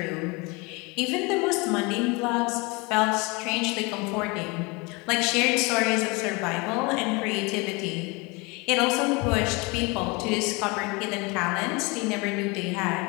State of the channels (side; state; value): right; quieter; 27.2 dB